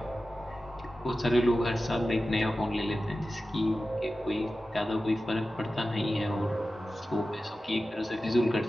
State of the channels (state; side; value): normal; both; correlation 0.94